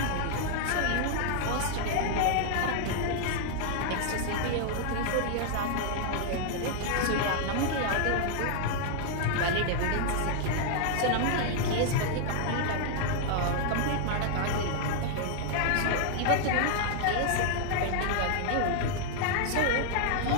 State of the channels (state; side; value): different; both; correlation 0.00